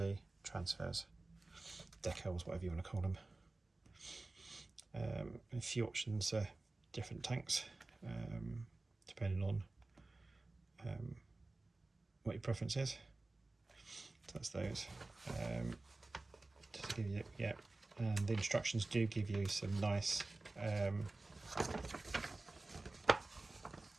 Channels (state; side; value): quieter; left; 3.1 dB